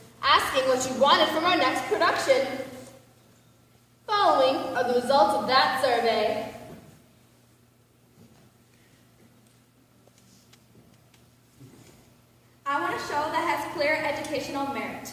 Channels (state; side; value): identical; both; correlation 1.00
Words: asking what you wanted from our next production. Following are the results of that survey. I want a show that has clear educational merit.